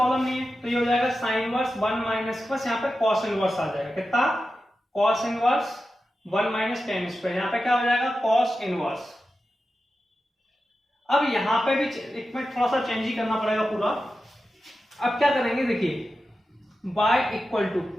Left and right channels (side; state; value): both; normal; correlation 0.92